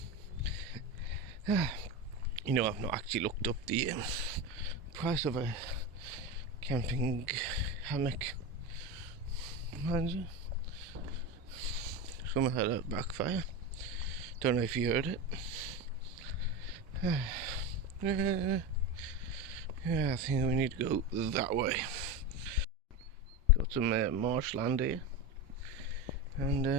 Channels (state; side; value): normal; both; correlation 0.20